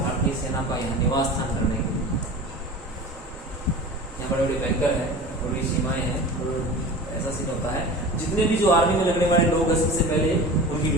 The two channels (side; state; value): both; normal; correlation 0.35